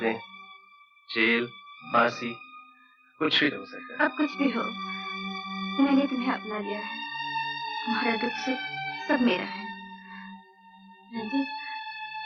जेल, फांसी, कुछ भी हो सकता है। अब कुछ भी हो, मैंने तुम्हें अपना लिया है। तुम्हारा दुख सुख सब मेरा है रंजीत।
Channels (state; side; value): identical; both; correlation 1.00